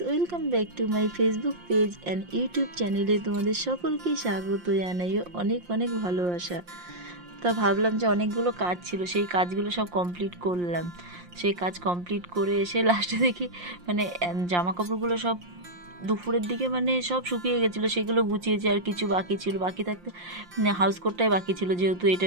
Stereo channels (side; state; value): left; late; 5.7 ms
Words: welcome back to my Facebook page and YouTube চ্যানেলে তোমাদের সকলকেই স্বাগত জানাই অনেক অনেক ভালোবাসা। তা ভাবলাম যে অনেকগুলো কাজ ছিল, সেই কাজগুলো সব কমপ্লিট করলাম। সেই কাজ কমপ্লিট করে এসে লাস্টে দেখি মানে জামা কাপড়গুলো সব দুপুরের দিকে মানে সব শুকিয়ে গেছিলো, সেগুলো গুছিয়েছি। আর কিছু বাকি ছিল, বাকি থাকতে হাউস কোটটাই বাকি ছিল, যেহেতু এটা